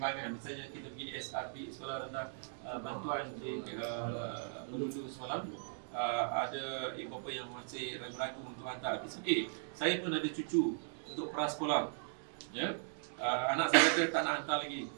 Misalnya kita pergi SRP, sekolah rendah bantuan di Melulu semalam, ada ibu bapa yang masih ragu-ragu untuk hantar. It's okay. Saya pun ada cucu untuk prasekolah. Ya? Anak saya kata tak nak hantar lagi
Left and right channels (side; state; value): left; silent; digital silence